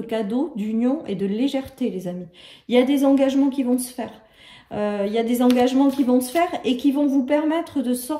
d'union et de légèreté, les amis. Il y a des engagements qui vont se faire. Il y a des engagements qui vont se faire et qui vont vous permettre de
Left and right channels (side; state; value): both; identical; correlation 1.00